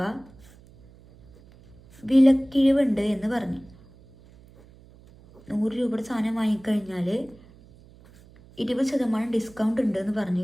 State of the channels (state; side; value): noise; right; hum, 25 dB below the sound